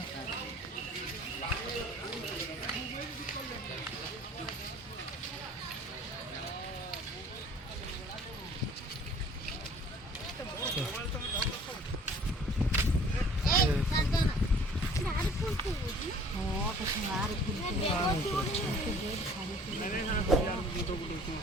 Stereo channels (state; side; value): normal; both; correlation 0.52